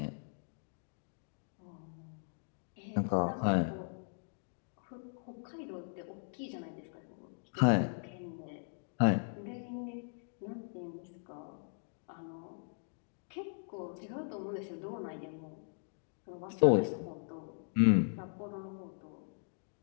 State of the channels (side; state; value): right; silent; digital silence